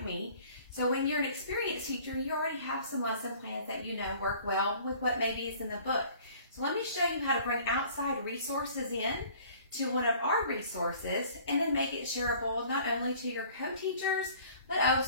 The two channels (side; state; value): both; inverted; correlation -0.51